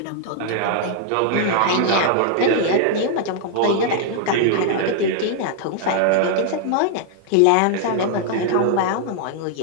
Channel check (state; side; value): different; both; correlation -0.01